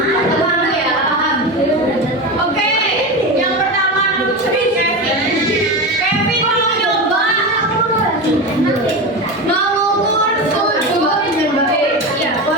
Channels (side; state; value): both; normal; correlation 0.22